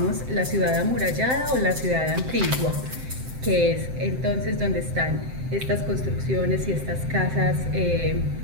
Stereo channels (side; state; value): left; late; 7.7 ms